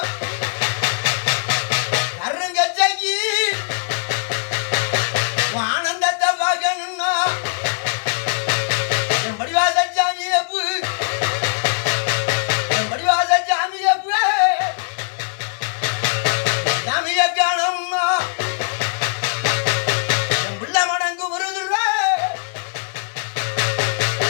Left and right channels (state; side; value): silent; right; digital silence